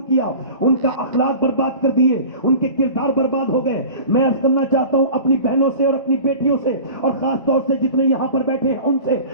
کیا. ان کا اخلاق برباد کر دیے, ان کے کردار برباد ہو گئے. میں عرض کرنا چاہتا ہوں اپنی بہنوں سے اور اپنی بیٹیوں سے, اور خاص طور سے جتنے یہاں پر بیٹھے ہیں ان سے,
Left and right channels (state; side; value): inverted; both; correlation -0.38